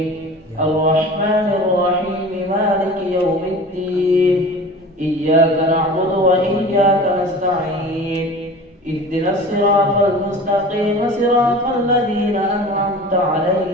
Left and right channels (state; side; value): normal; both; correlation 0.39